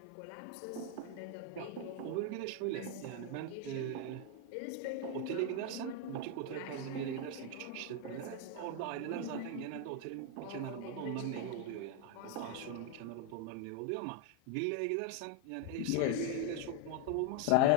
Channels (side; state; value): both; different; correlation 0.01